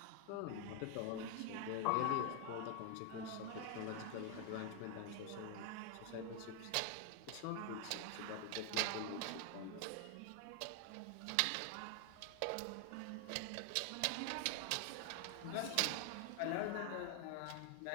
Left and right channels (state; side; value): different; both; correlation 0.00